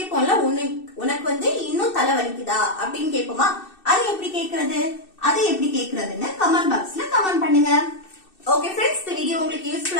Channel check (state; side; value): late; right; 2.6 ms